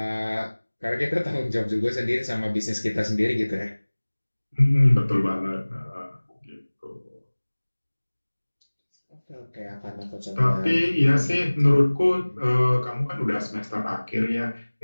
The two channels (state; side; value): inverted; both; correlation -1.00